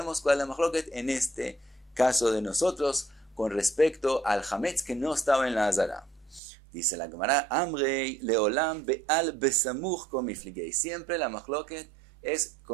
cuál es la mahloket en este caso de nosotros con respecto al hametz que no estaba en la azara. Dice la Gemara, Amrei leolam be'al besamuch komifligei. Siempre la mahloket es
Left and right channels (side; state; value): left; drops out; at 6.4 s